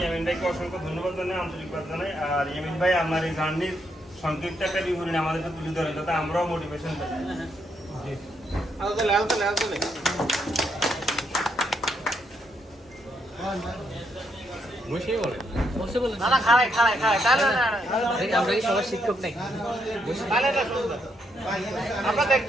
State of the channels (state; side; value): normal; both; correlation 0.77